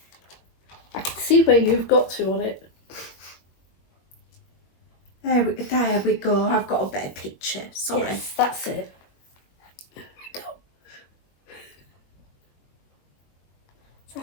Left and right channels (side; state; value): right; late; 21 ms